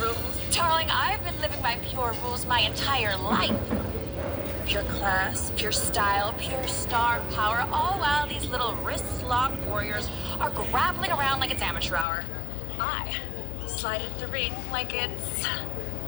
rules. Darling, I've been living by pure rules my entire life. Pure class, pure style, pure star power, all while these little wrist-locked warriors are grappling around like it's amateur hour. I slide into the ring like it's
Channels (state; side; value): drops out; right; at 12.1 s